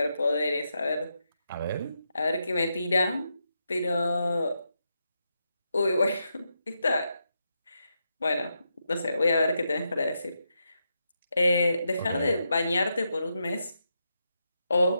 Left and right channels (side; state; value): both; inverted; correlation -0.84